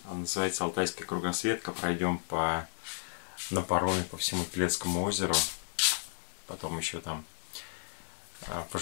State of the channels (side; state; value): right; silent; 56 dB below the other